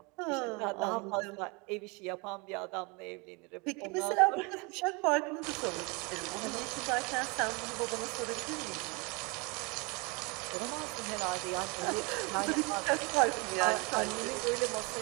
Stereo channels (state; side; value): quieter; left; 29.1 dB